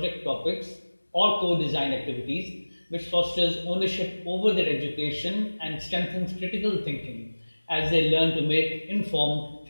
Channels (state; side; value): inverted; both; correlation -1.00